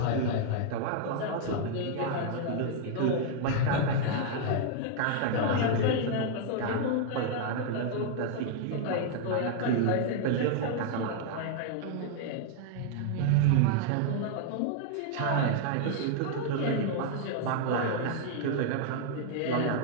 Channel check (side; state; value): both; different; correlation 0.00